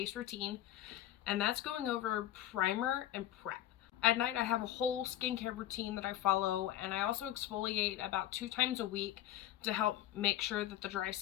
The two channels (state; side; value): quieter; right; 12.9 dB